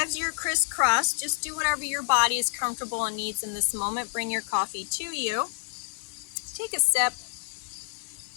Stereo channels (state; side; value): silent; right; digital silence